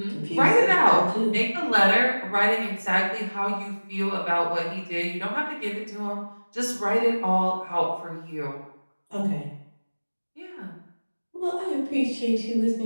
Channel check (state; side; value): inverted; both; correlation -1.00